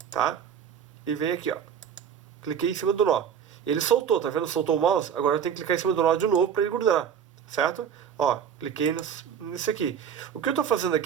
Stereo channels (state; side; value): quieter; left; 8.0 dB